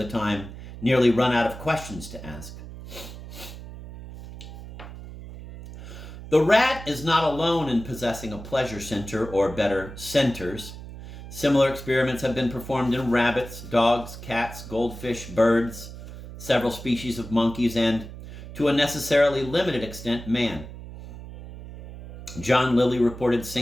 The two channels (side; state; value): right; noise; hum, 13 dB below the sound